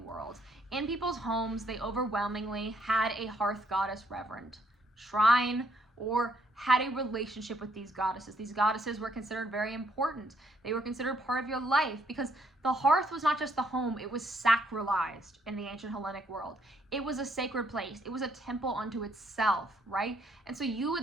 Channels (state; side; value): normal; both; correlation 0.69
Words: In people's homes, they overwhelmingly had a hearth goddess reverend, shrine, or had a relationship with these goddesses. These goddesses were considered very important. They were considered part of your life because the hearth was not just the home, it was sacralized in the ancient Hellenic world. It was a sacred place. It was a temple unto itself, right? And so you